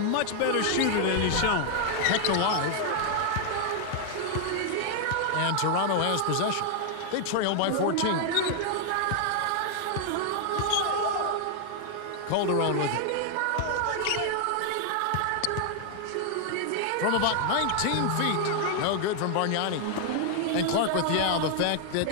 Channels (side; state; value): both; different; correlation 0.00